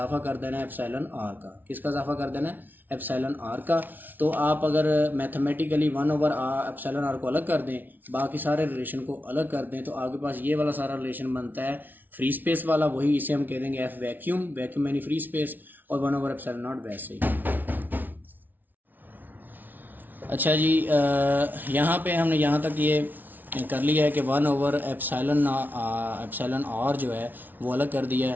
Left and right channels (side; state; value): left; late; 0.085 ms